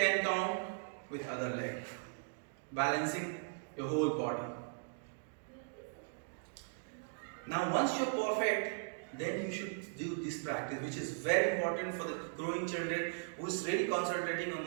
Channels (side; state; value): left; silent; digital silence